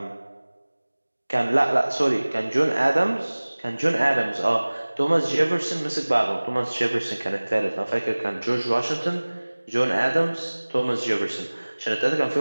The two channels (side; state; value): both; inverted; correlation -1.00